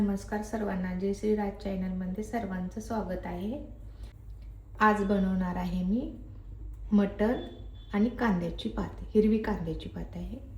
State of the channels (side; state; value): both; identical; correlation 1.00